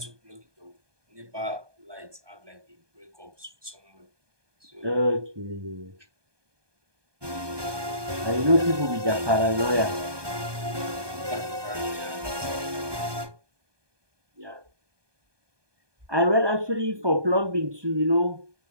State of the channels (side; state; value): left; late; 1.2 ms